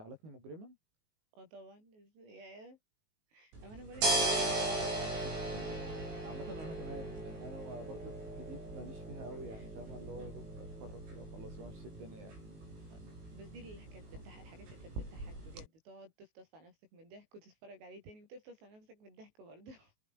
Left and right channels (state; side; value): late; left; 19 ms